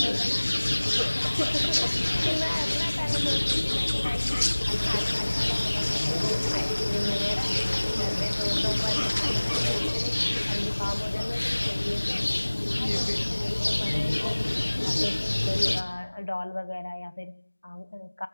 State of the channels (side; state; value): both; inverted; correlation -1.00